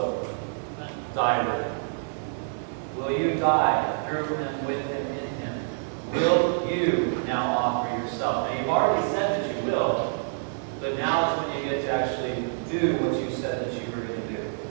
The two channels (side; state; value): left; silent; digital silence